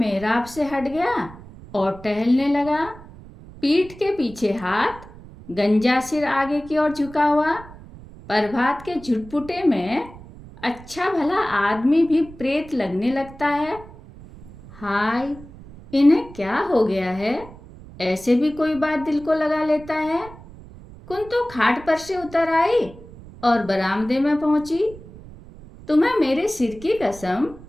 से हट गया और टहलने लगा। पीठ के पीछे हाथ, गंजा सिर आगे की ओर झुका हुआ। प्रभात के झुटपुटे में अच्छा भला आदमी भी प्रेत लगने लगता है। हाय, इन्हें क्या हो गया है? ऐसे भी कोई बात दिल को लगा लेता है। कुंतो खाट पर से उतर आई और बरामदे में पहुंची। तुम्हें मेरे सिर की कसम,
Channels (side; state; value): right; noise; rumble, 18 dB below the sound